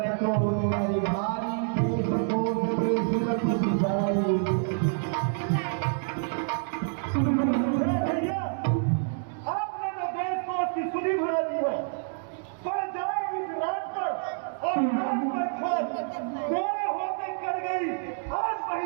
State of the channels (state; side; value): silent; left; digital silence